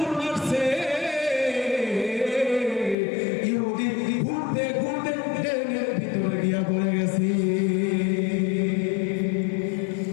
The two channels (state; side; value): drops out; right; at 3.0 s